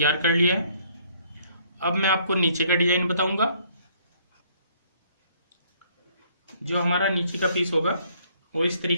कर लिया है। अब मैं आपको नीचे का डिजाइन बताऊंगा। जो हमारा नीचे का पीस होगा वो इस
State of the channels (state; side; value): inverted; both; correlation -0.64